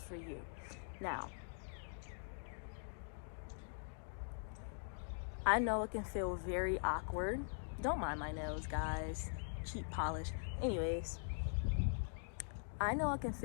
for you. Now, I know it can feel very awkward. Don't mind my nails, guys. Cheap polish. Anyways, I know it can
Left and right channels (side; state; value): right; silent; digital silence